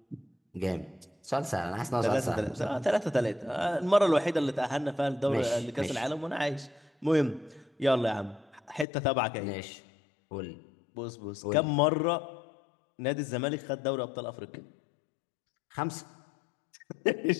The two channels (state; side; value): drops out; right; at 8.8 s